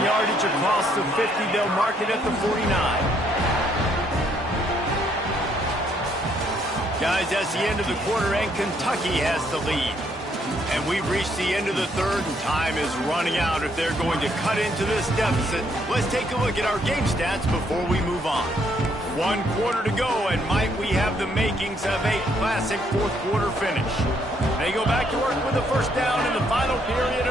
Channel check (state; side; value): normal; both; correlation 0.70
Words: yardage across the 50. They'll mark it at the 49. Guys, that's the end of the quarter, and Kentucky has the lead. And we've reached the end of the third, and time is running out if they're going to cut into this deficit. Let's take a look at our game stats before we move on. 1 quarter to go, and might we have the makings of a classic fourth quarter finish. They go back to work with the first down in the final period